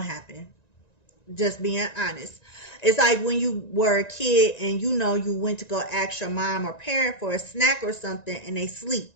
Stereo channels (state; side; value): late; right; 1.9 ms